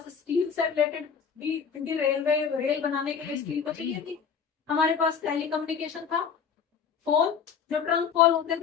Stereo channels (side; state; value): right; quieter; 6.9 dB